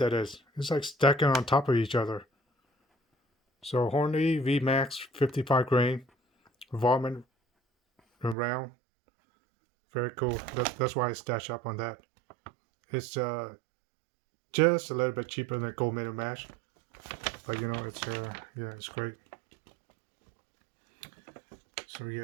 is. It's like stacking on top of each other. So Hornady V Max 55 grain, varmint round. Very cool. That's why I stash up on that. It's just a little bit cheaper than Gold Medal Mash, but you know it's yeah, it's great. So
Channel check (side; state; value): left; drops out; at 8.3 s